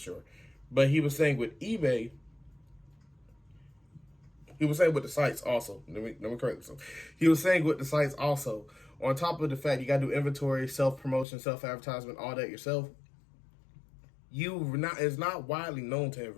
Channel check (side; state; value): right; drops out; at 11.2 s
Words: But he was saying with eBay, he was saying with the sites also. Let me correct myself. He was saying with the sites also, on top of the fact you got to do inventory, self-promotion, self-advertisement, all that yourself, it's not widely known to